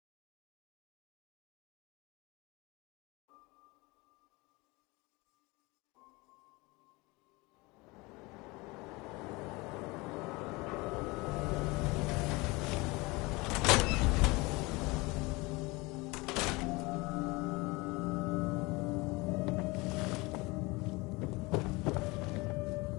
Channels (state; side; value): quieter; right; 24.2 dB